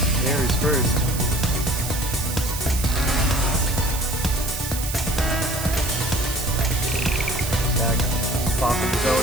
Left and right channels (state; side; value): noise; right; hiss, 7 dB below the sound